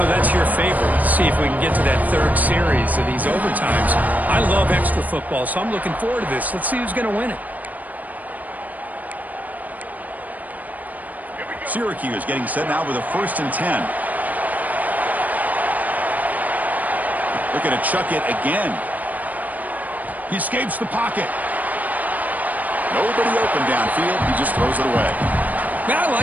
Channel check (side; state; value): left; late; 0.078 ms